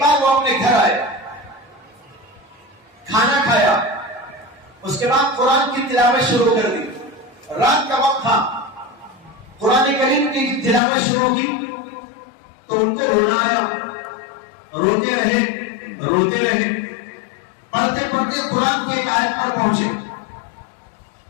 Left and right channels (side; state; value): right; drops out; at 10.8 s